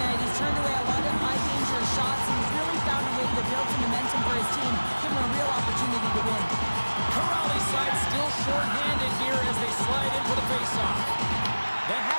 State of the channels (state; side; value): inverted; both; correlation -1.00